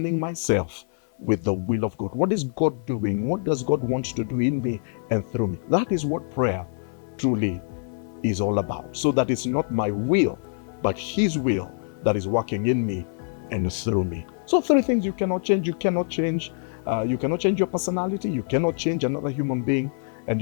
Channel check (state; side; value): silent; right; 59 dB below the other